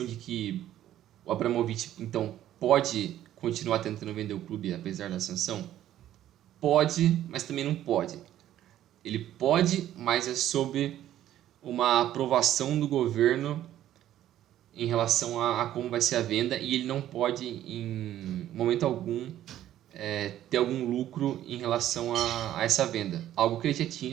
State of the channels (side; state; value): left; quieter; 12.4 dB